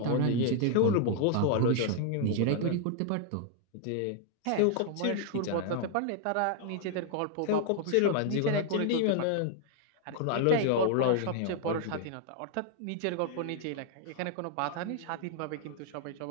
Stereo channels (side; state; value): both; different; correlation 0.00